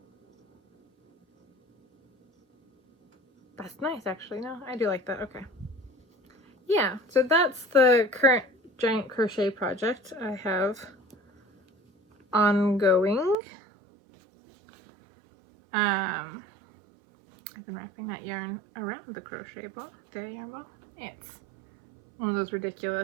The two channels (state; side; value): drops out; left; at 13.4 s